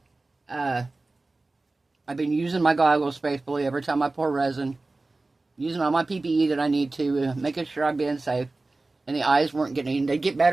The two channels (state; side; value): quieter; left; 3.3 dB